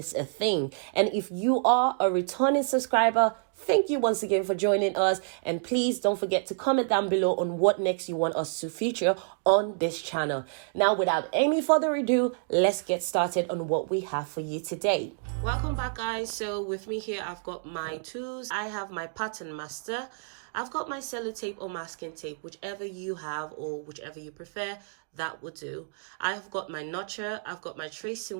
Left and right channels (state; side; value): silent; left; digital silence